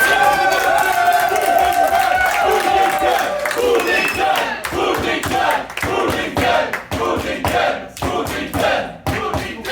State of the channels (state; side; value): identical; both; correlation 1.00